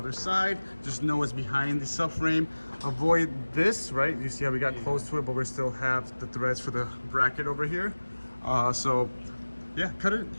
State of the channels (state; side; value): inverted; both; correlation -1.00